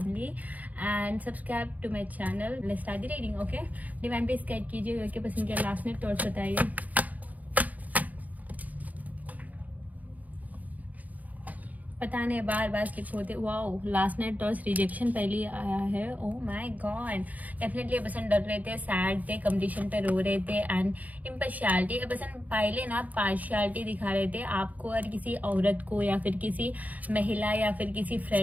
and subscribe to my channel. Let's start the reading. Okay, divine पे स्केच कीजिए कि पसंद किया लास्ट में थॉट्स बताइए। पता नहीं बार बार स्किप होते। Wow, last night toss rejection पहले आया है। ओह माय गॉड, डेफिनेटली पर्सन डर रहे थे, सैड थे, कंपटीशन पे रो रहे थे एंड इम्पार्शियलिटी पर्सन पहले ना पार्शियलिटी दिखा रहे थे आपको और किसी औरत को या फिर किसी महिला या फिर किसी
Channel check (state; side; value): late; left; 0.077 ms